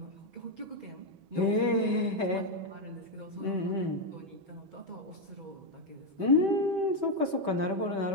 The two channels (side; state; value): left; late; 6.2 ms